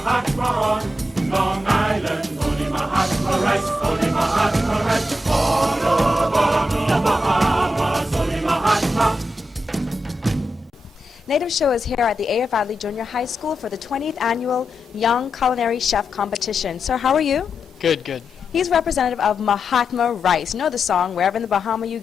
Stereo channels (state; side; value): normal; both; correlation 0.87